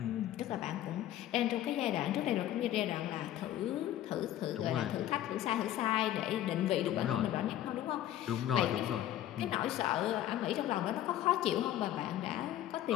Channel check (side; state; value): right; quieter; 12.6 dB